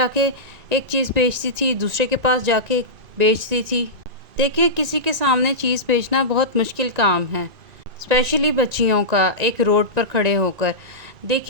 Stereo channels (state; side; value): late; left; 1.9 ms